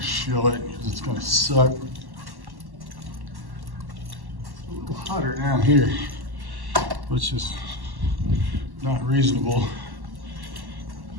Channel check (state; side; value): late; left; 1.1 ms